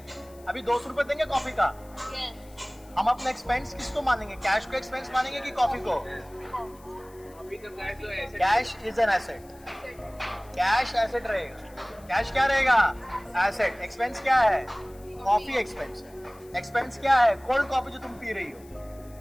अभी 200 रुपए देंगे कॉफी का, हम अपना एक्सपेंस किसको मानेंगे? कैश को एक्सपेंस मानेंगे कि कॉफी को? अभी तो कैश तो ऐसे cash is an asset, cash asset रहेगा। कैश क्या रहेगा? एसेट। एक्सपेंस क्या है? कॉफी एक्सपेंस है। एक्सपेंस क्या है? कोल्ड कॉफी जो तुम पी रही हो।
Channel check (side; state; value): left; noise; hiss, 26 dB below the sound